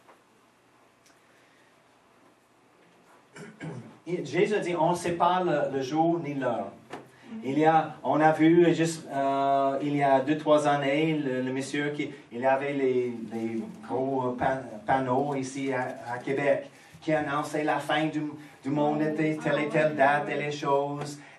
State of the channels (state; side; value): identical; both; correlation 1.00